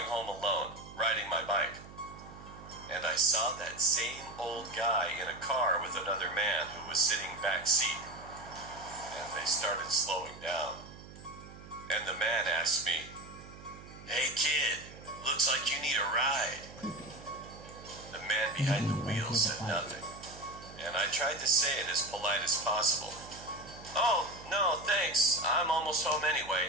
home alone, riding my bike. And I saw that same old guy in a car with another man who was sitting back seat. And they started slowing down. And the man asked me, "Hey kid, looks like you need a ride." The man behind the wheel said nothing, and I tried to say it as polite as possible. "Oh, no, thanks. I'm almost home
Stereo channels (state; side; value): noise; right; hum, 17 dB below the sound